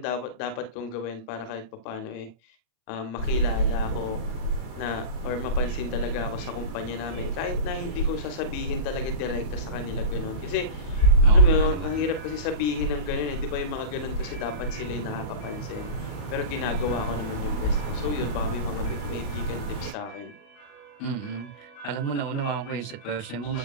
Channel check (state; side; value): late; right; 39 ms